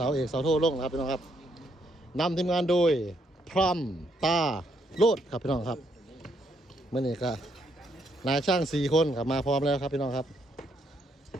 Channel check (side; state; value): both; normal; correlation 0.74